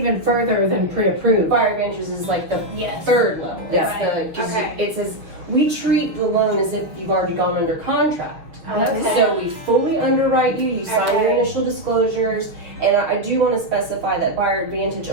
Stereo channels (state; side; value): late; left; 6.1 ms